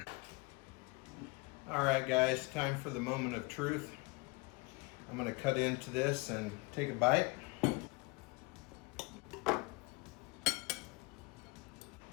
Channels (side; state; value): right; quieter; 25.6 dB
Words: All right guys, time for the moment of truth. I'm gonna cut into this and take a bite.